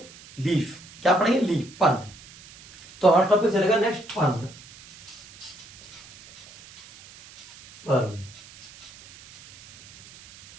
लीफ। क्या पढ़ेंगे? लीफ, पर्ण। तो हमारा टॉपिक चलेगा नेक्स्ट पर्ण। पर्ण,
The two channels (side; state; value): right; noise; hiss, 21 dB below the sound